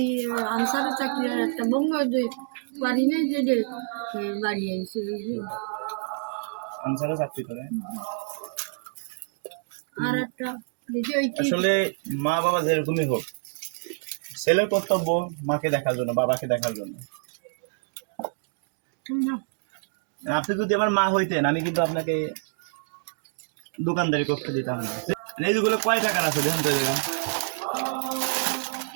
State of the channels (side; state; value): left; silent; digital silence